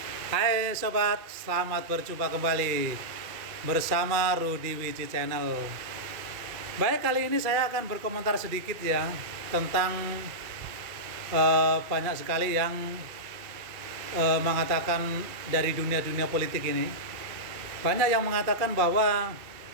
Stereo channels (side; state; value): left; late; 2.3 ms